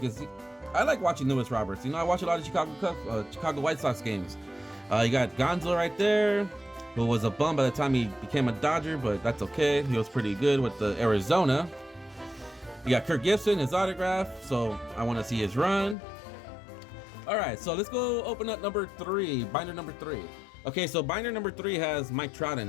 is, I like watching Louis Roberts. You know, I watch a lot of Chicago White Sox games. You got Gonzo right there, who was a bum by the time he became a Dodger, but that's okay. He was pretty good with the Arizona. You got Kirk Gibson, his autograph, so I want to see his run. All right, so let's go open up number 3, binder number 3. Okay, so binder number 3 has Mike Trout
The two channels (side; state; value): right; drops out; at 16.0 s